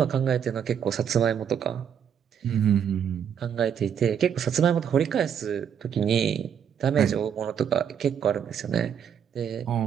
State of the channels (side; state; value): left; quieter; 8.2 dB